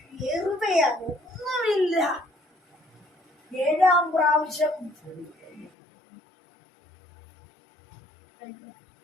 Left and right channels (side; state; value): right; drops out; at 5.7 s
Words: വെറുതെയാ, ഒന്നുമില്ല. 7ാം പ്രാവശ്യം